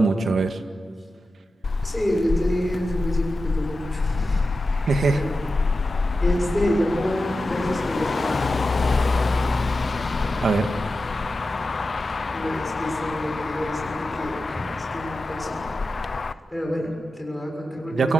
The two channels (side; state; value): both; normal; correlation 0.91